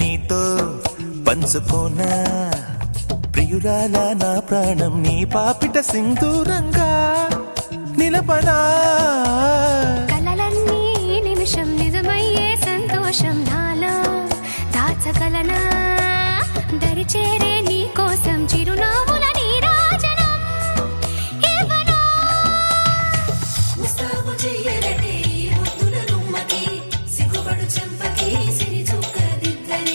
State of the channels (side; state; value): both; inverted; correlation -1.00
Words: పంచుకోనా ప్రియురాల నా ప్రాణం నీ పాపిట సింధూరంగా నిలపనా కలలన్నీ నిమిషం నిజమయ్యే సంతోషం నాలో దాచగలనా దరిచేరే నీ కోసం చిరునవ్వుల నీరాజనం ఇవ్వనా ముస్తాబు చెయ్యరటే ఈ ముద్దుల గుమ్మకి సిగ్గుపడు చెంపకి సిరి